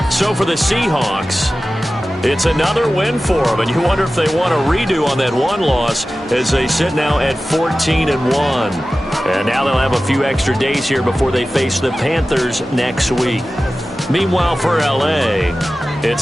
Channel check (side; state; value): both; normal; correlation 0.95